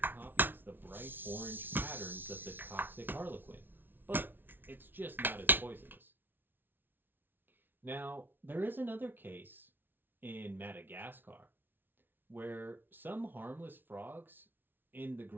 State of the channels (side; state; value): left; late; 0.097 ms